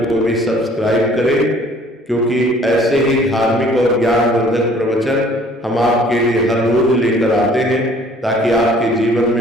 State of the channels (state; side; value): normal; both; correlation 0.55